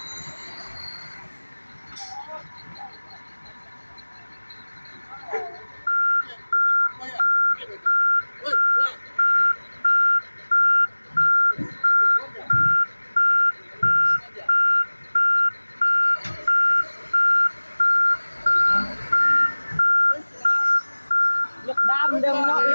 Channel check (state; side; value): inverted; both; correlation -1.00